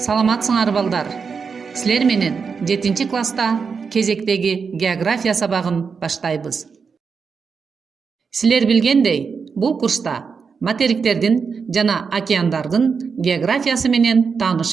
балдар. Силер менен 7 класста кезектеги география сабагын баштайбыз. Силер билгендей, бул курста материктердин жана океандардын географиясы менен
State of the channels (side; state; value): left; quieter; 5.6 dB